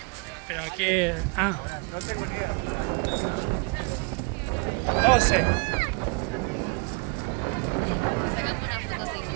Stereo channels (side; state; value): left; quieter; 31.7 dB